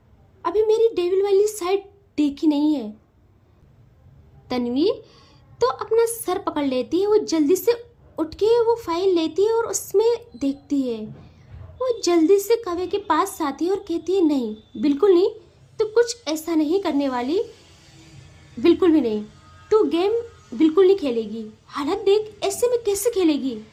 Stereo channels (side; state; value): both; identical; correlation 1.00